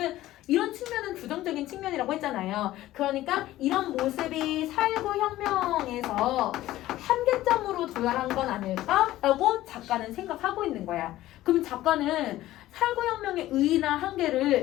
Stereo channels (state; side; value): quieter; right; 15.3 dB